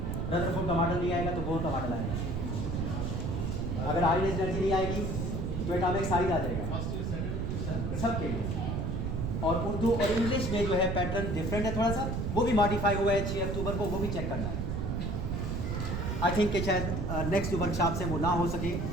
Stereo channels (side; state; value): right; noise; rumble, 1 dB below the sound